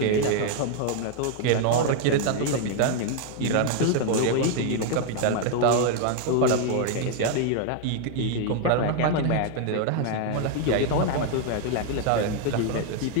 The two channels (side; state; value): both; different; correlation 0.00